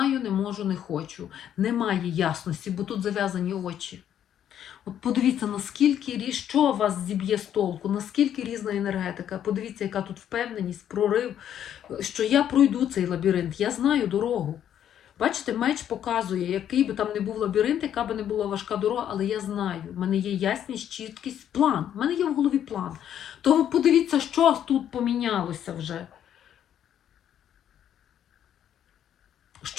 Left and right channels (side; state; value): right; quieter; 10.1 dB